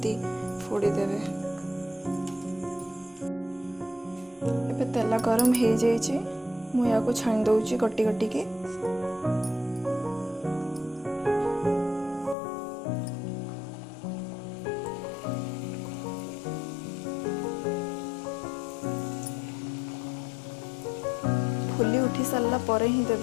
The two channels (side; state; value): right; drops out; at 12.4 s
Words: फोड़ी देबे। एबे तेल गरम हो जाइए। मु याको छाणी दउची गट्टी गट्टी के। फुली उठी सारा परे ही